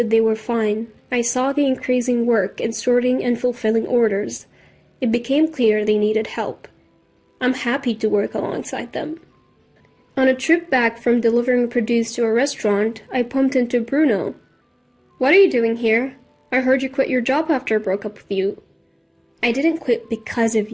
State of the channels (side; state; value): both; identical; correlation 1.00